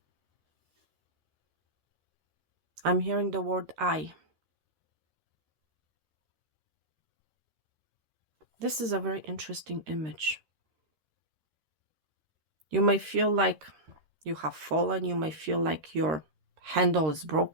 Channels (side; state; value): left; late; 13 ms